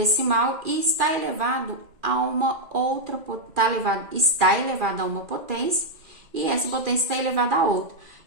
e está elevado a uma outra, está elevado a uma potência e essa potência está elevada a outra.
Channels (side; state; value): left; late; 2.4 ms